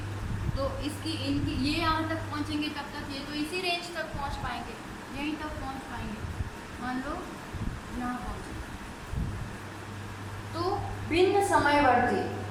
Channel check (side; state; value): both; identical; correlation 1.00